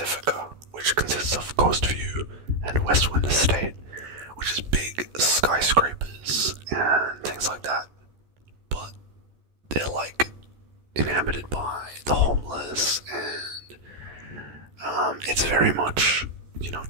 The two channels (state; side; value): late; left; 14 ms